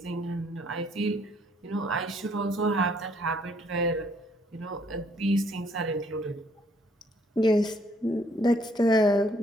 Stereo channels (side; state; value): both; normal; correlation 0.66